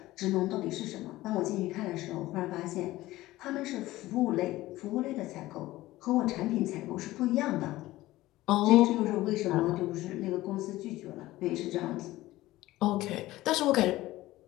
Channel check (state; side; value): quieter; right; 17.1 dB